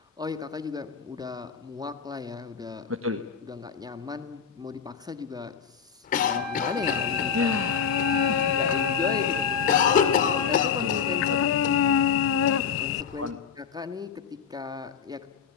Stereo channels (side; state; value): right; quieter; 7.2 dB